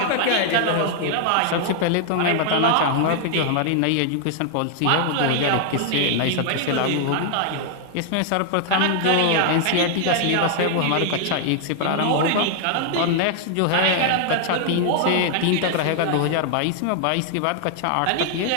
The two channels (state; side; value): different; both; correlation 0.00